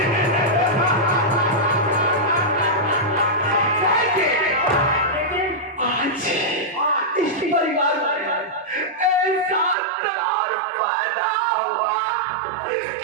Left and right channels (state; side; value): drops out; left; at 9.8 s